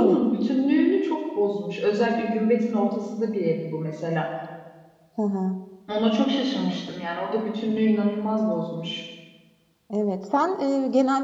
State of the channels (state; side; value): identical; both; correlation 1.00